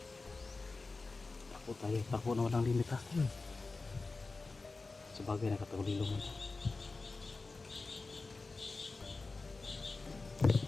Takbo tayo. Takbo na walang limit, ha? Sabagay nakatagulilong mo.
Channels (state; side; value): quieter; right; 3.7 dB